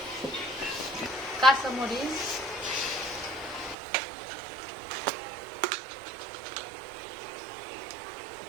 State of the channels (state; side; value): drops out; left; at 3.8 s